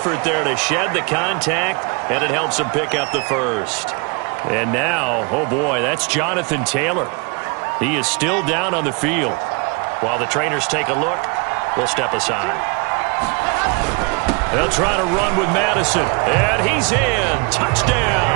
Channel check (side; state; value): left; quieter; 31.7 dB